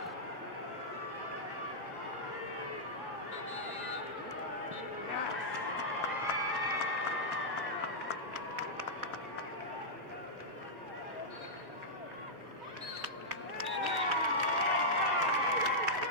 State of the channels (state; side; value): normal; both; correlation -0.09